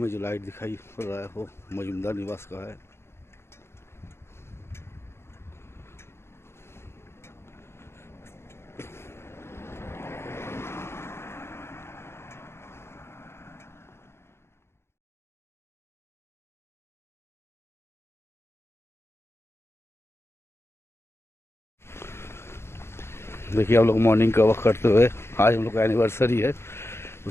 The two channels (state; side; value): late; right; 0.12 ms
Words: जो लाइट दिखाई पड़ रहा है वो मजूमदार निवास का है। देखिए हम लोग मॉर्निंग का वॉक करते हुए, आज हम लोग का एनिवर्सरी है,